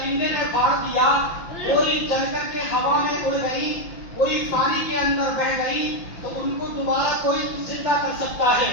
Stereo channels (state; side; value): late; right; 5.9 ms